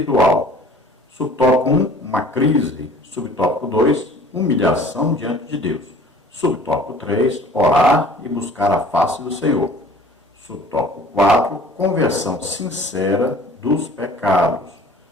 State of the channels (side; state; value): both; normal; correlation 0.49